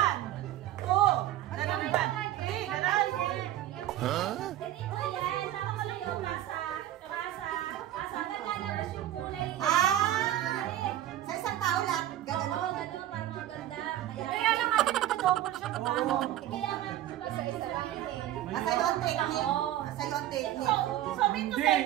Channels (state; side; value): quieter; left; 13.2 dB